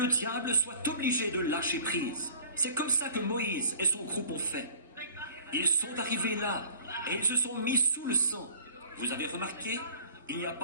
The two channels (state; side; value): inverted; both; correlation -0.49